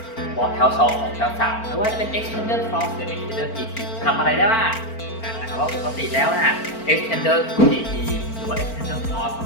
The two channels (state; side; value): late; right; 4.4 ms